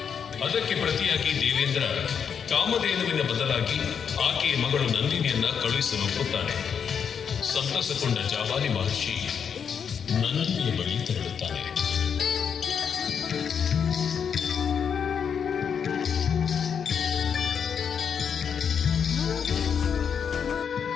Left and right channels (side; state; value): right; quieter; 7.2 dB